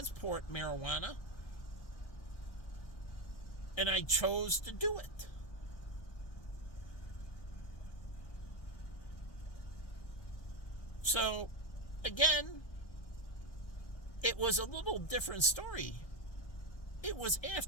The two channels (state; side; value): late; right; 1.6 ms